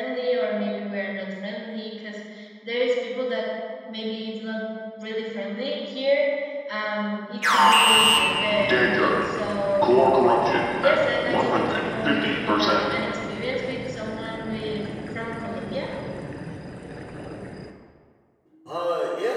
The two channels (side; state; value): both; identical; correlation 1.00